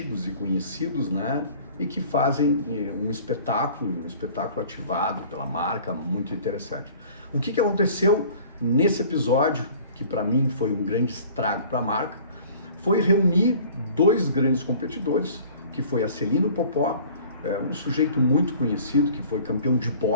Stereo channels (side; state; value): both; inverted; correlation -0.48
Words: e conhecidos, né? E que fazem um espetáculo ativado pela marca, muito interessante. O que aconteceu nesse episódio, que para mim foi um grande estrago para a marca, foi reunir dois grandes competidores, que foi a Celino Popó, um sujeito muito conhecido, que foi campeão de